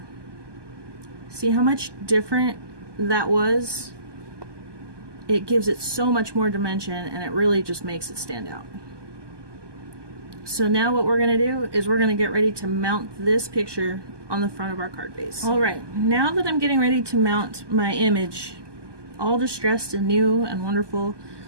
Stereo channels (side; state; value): left; late; 1.2 ms